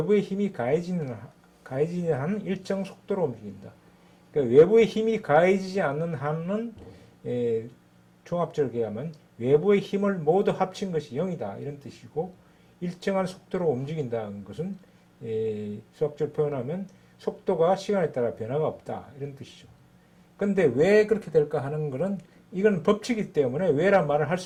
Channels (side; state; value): both; identical; correlation 1.00